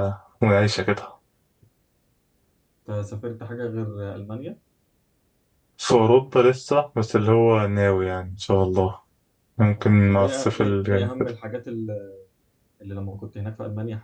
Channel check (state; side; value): identical; both; correlation 1.00